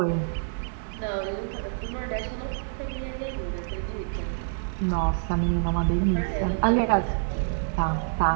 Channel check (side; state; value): left; silent; digital silence